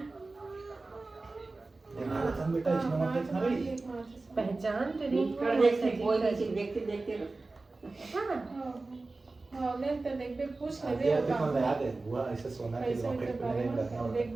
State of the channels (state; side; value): quieter; left; 3.4 dB